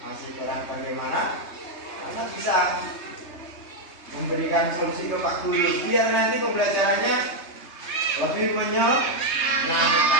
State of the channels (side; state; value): right; late; 3.2 ms